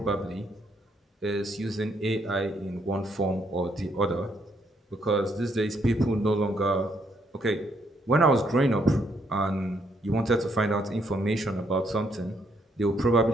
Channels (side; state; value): both; normal; correlation 0.72